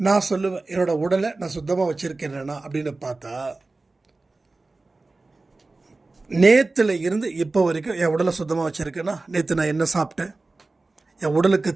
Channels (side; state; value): left; quieter; 3.4 dB